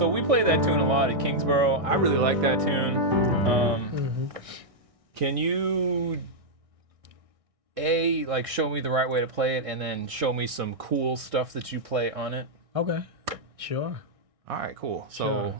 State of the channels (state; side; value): late; left; 1.6 ms